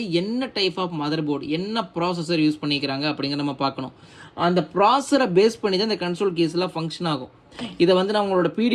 என்ன டைப் ஆஃப் மதர் போர்டு, என்ன ப்ராசஸர் யூஸ் பண்ணிக்கிறாங்க அப்படிங்கிற நம்ம பார்க்கணும். அந்த ப்ராசஸரை பேஸ் பண்ணி தான் இந்த கன்சோல் கீஸ்லாம் ஃபங்க்ஷன் ஆகும். இதை வந்து நம்மளோட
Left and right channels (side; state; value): both; identical; correlation 1.00